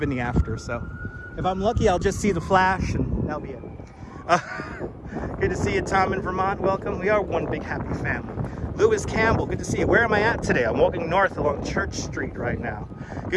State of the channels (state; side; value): identical; both; correlation 1.00